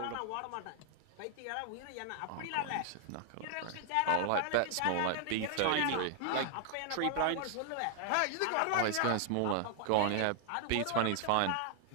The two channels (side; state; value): both; different; correlation 0.00